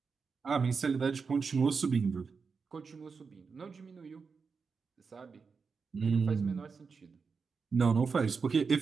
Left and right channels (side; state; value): left; quieter; 5.2 dB